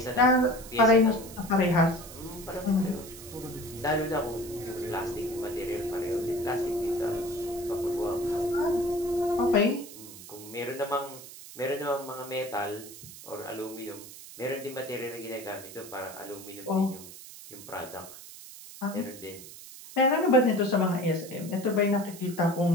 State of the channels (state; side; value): noise; right; hiss, 15 dB below the sound